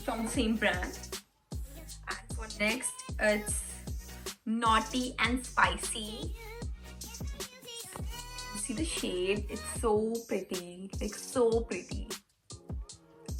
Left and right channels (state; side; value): identical; both; correlation 1.00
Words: from same brand. And for next, it's Naughty and Spicy. See the shade? It's so pretty, so pretty.